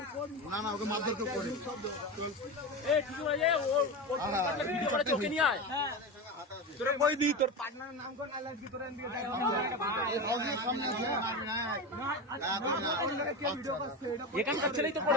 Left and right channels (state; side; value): normal; both; correlation 0.21